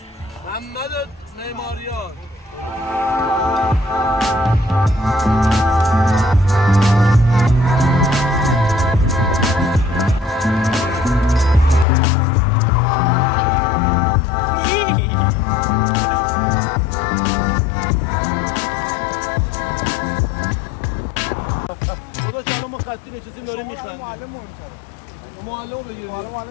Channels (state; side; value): drops out; right; at 11.9 s